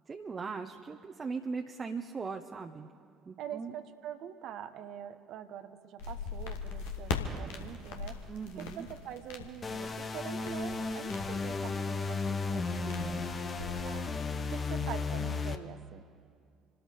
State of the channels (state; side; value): normal; both; correlation 0.63